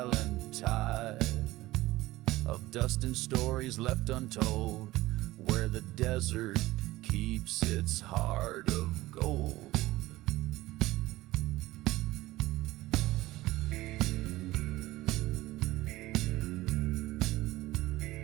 tide of dust and stories left untold, where the desert keeps its heart of gold.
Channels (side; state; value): left; quieter; 17.9 dB